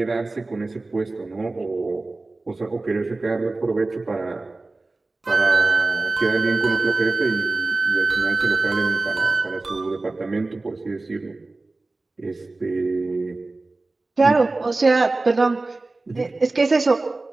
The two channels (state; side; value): quieter; left; 3.3 dB